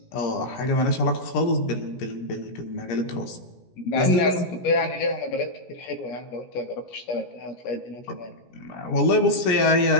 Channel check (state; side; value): late; right; 17 ms